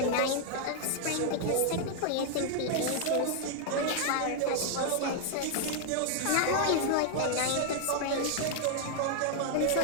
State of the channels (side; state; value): both; different; correlation 0.00